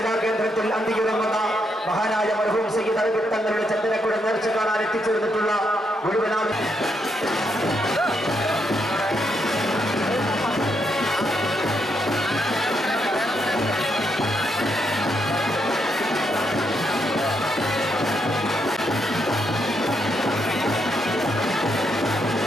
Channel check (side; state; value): both; normal; correlation 0.78